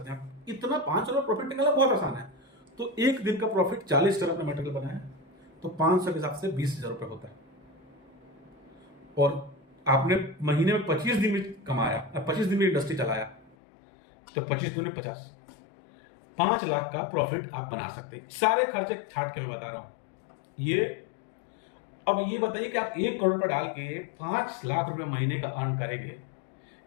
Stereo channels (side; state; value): right; drops out; at 13.6 s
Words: हैं आप, इतना 500 रुपए प्रॉफिट निकालना बहुत आसान है। तो एक दिन का प्रॉफिट 40 टन अपने मटेरियल बनाया तो 500 के हिसाब से 20,000 रुपए होता है। और आपने महीने में 25 दिन में कमाया, 25 दिन में इंडस्ट्री चलाया, तो 25 दूनी 50, 5 लाख का प्रॉफिट आप बना सकते हैं। सारे खर्चे छाट के मैं बता रहा हूं ये। अब ये बताइए कि आप 1 करोड़ रुपए डाल के 5 लाख रुपए महीने का अर्न करेंगे,